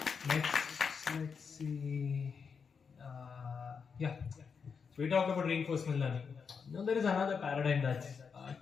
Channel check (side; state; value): right; quieter; 5.9 dB